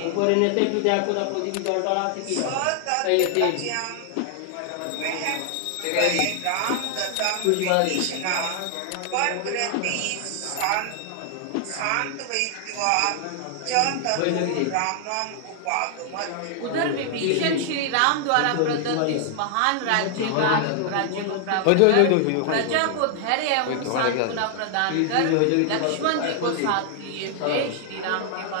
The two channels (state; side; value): different; both; correlation 0.00